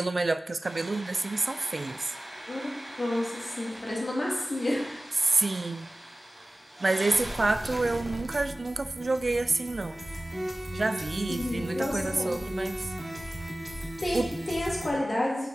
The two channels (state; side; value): normal; both; correlation 0.97